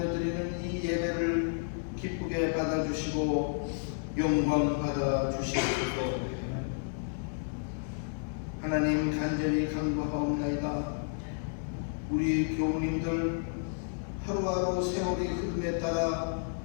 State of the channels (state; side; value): silent; right; 57 dB below the other